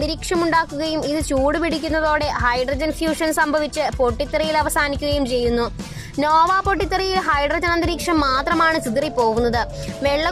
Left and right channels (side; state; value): both; identical; correlation 1.00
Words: ഉണ്ടാക്കുകയും ഇത് ചൂടുപിടിക്കുന്നതോടെ ഹൈഡ്രജൻ ഫ്യൂഷൻ സംഭവിച്ച് പൊട്ടിത്തെറിയിൽ അവസാനിക്കുകയും ചെയ്യുന്നു. നോവ പൊട്ടിത്തെറിയിൽ ഹൈഡ്രജൻ അന്തരീക്ഷം മാത്രമാണ് ചിതറിപ്പോകുന്നത്.